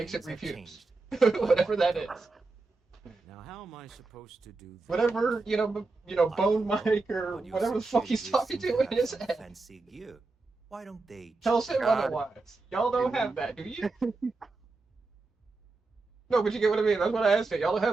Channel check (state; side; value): quieter; left; 3.6 dB